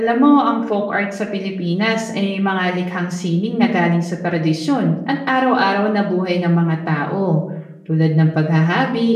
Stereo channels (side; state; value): both; identical; correlation 1.00